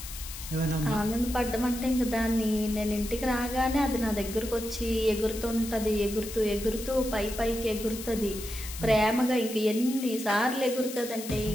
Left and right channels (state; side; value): noise; left; hiss, 11 dB below the sound